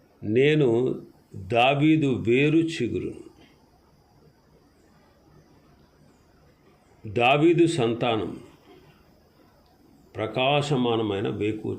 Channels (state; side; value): identical; both; correlation 1.00